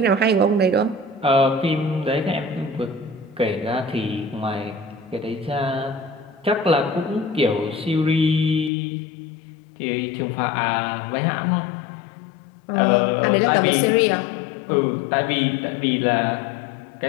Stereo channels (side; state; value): right; drops out; at 8.7 s